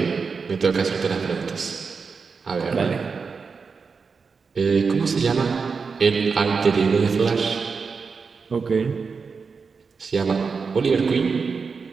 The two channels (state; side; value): quieter; left; 5.1 dB